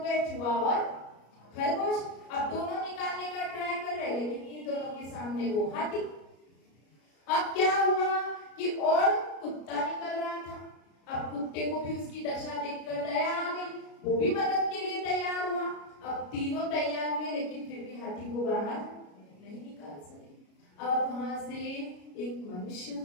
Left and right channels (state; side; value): late; right; 33 ms